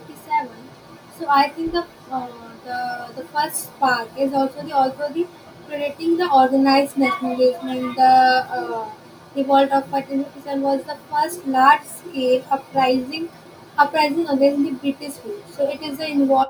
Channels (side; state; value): both; identical; correlation 1.00